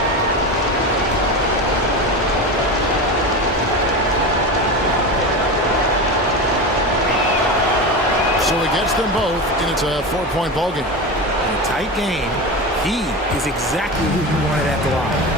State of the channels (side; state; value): both; normal; correlation 0.23